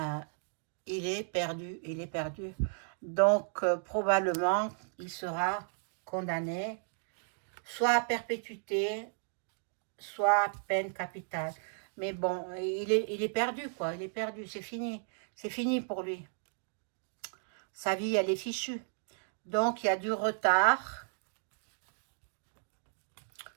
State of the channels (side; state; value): left; silent; digital silence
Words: il est perdu, il est perdu. Donc, probablement, il sera condamné soit à perpétuité, soit à peine capitale. Mais bon, il est perdu, quoi. Il est perdu, c'est fini. C'est fini pour lui. Sa vie, elle est fichue. Donc, il y a du retard.